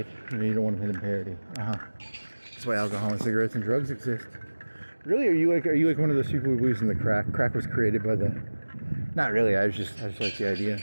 You don't want to hit them parity. That's why alcohol and cigarettes and drugs exist. Really, are you like one of those people who believes in the crack? Crack was created by the. Not really. I just like the idea.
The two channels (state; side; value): inverted; both; correlation -1.00